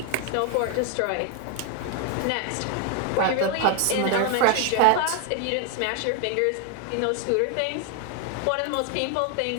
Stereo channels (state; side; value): different; both; correlation 0.01